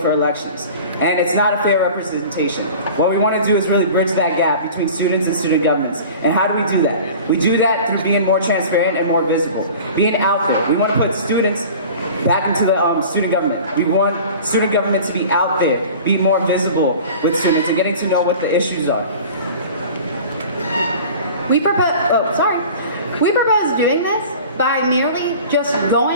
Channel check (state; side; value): inverted; both; correlation -0.41